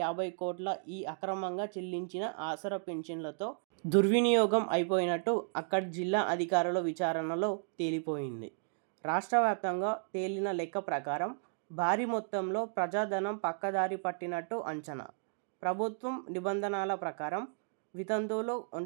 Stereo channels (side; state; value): left; silent; digital silence